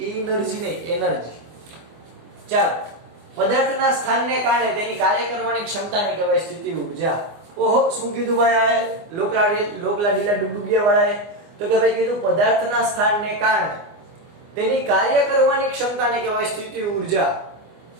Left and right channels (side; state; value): left; late; 24 ms